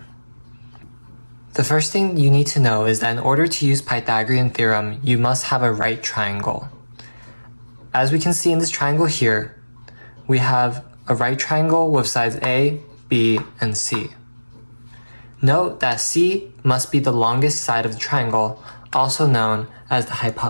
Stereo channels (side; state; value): both; inverted; correlation -1.00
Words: The first thing you need to know is that in order to use Pythagorean Theorem, you must have a right triangle. As we can see in this triangle here, we have a right triangle with sides A, B, and C. Note that C must be the longest side of the triangle, also known as the